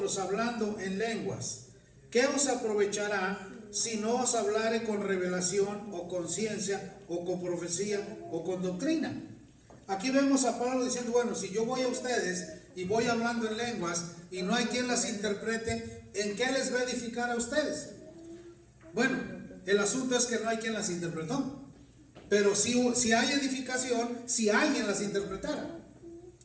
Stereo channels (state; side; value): identical; both; correlation 1.00